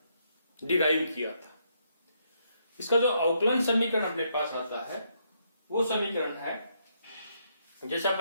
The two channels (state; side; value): inverted; both; correlation -0.75